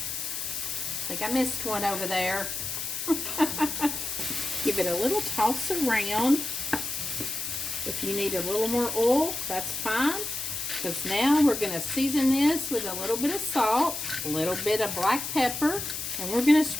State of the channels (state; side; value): noise; left; hiss, 5 dB below the sound